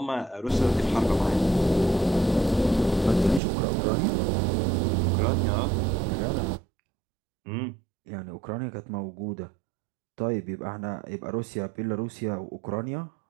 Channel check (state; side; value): drops out; left; at 3.4 s